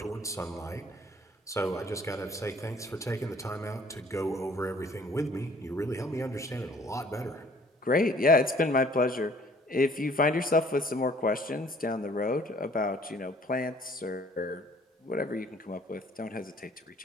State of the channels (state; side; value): normal; both; correlation 0.57